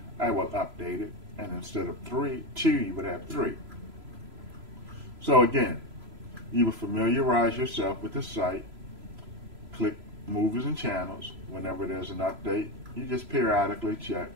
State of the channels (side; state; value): left; late; 3.0 ms